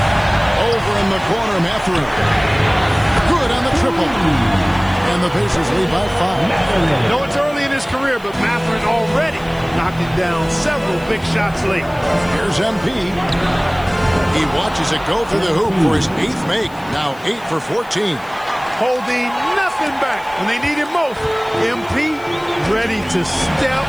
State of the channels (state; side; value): noise; left; hiss, 25 dB below the sound